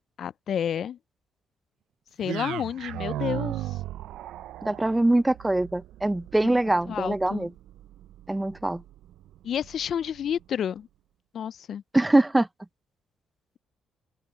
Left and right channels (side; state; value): both; normal; correlation 0.89